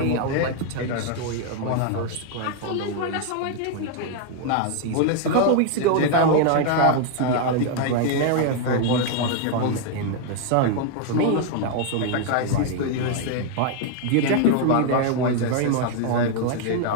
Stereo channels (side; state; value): both; different; correlation 0.00